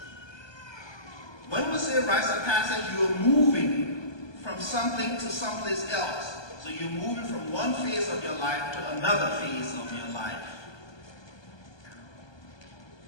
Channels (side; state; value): right; late; 1.2 ms